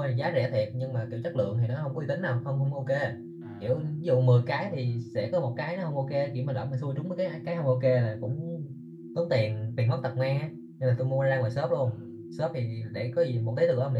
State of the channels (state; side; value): identical; both; correlation 1.00